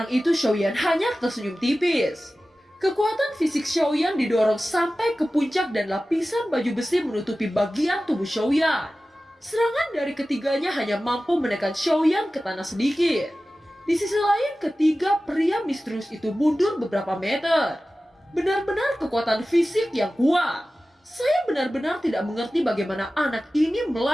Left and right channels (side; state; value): both; normal; correlation 0.96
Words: itu, Xiaoyan hanya tersenyum tipis. Kekuatan fisik Xiaoyan didorong sampai ke puncak dan lapisan baju besi menutupi bagian tubuh Xiaoyan. Serangan dari ketiganya hanya mampu menekan Xiaoyan ke tanah sedikit. Di sisi lain, ketiga pria misterius itu mundur beberapa meter. Benar-benar kekuatan fisik yang kuat. Saya benar-benar tidak mengerti bagaimana anak ini